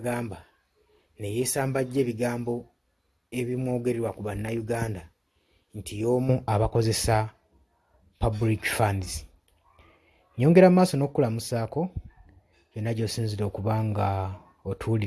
ne yeesambajja ebigambo ebimwogererwa ku bannayuganda nti y'omu abakozesa public funds. Nyongera maaso n'okukulamusaako yonna gy'osinzira okuba nga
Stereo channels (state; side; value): identical; both; correlation 1.00